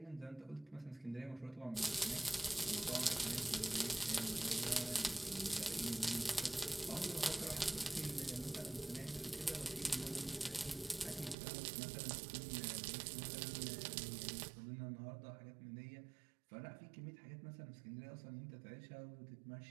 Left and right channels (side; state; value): left; drops out; at 11.4 s